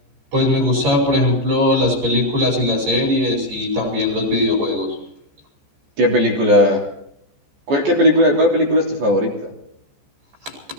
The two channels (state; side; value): late; left; 14 ms